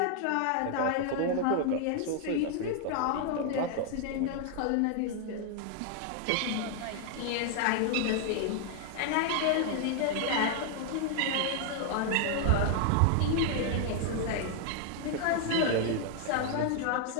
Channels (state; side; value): different; both; correlation 0.00